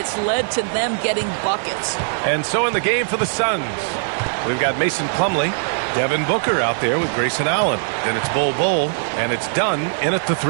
led to them getting buckets. And so in the game for the Suns, we've got Mason Plumlee, Devin Booker out there with Grayson Allen. Then it's Bol, and it's done in at the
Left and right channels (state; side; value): silent; left; 56 dB below the other